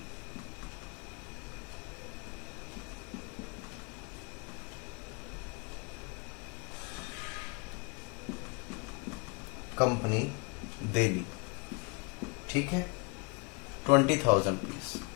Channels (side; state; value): right; quieter; 30.5 dB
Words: Company Delhi. ठीक है, 20,000 रुपीज।